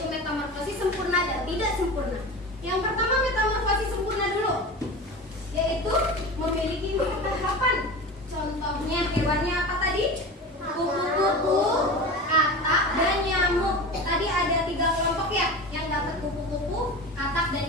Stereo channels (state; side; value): normal; both; correlation 0.31